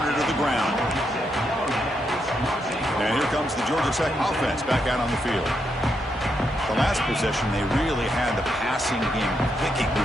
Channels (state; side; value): normal; both; correlation 0.81